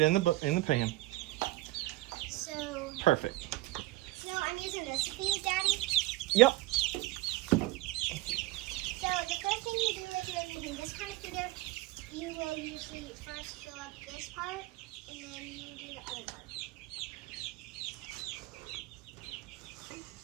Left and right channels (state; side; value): quieter; left; 18.9 dB